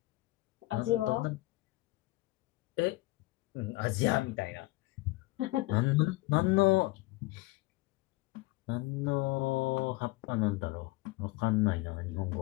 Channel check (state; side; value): quieter; right; 21.1 dB